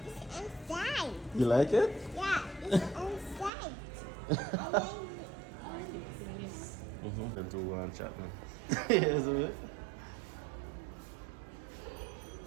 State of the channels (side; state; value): left; drops out; at 3.5 s